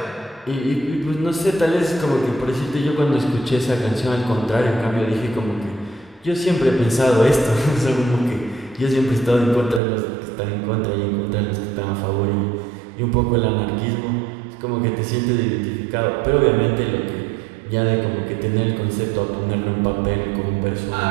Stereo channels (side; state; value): left; drops out; at 9.8 s